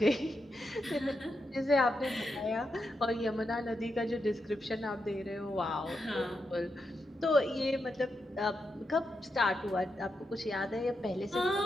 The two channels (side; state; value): both; normal; correlation 0.85